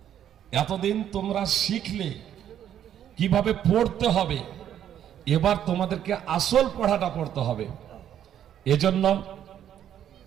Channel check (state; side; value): quieter; left; 10.2 dB